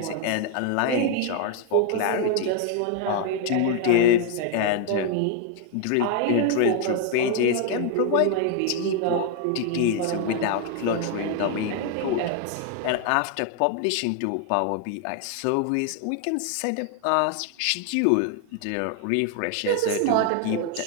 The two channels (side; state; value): both; different; correlation 0.00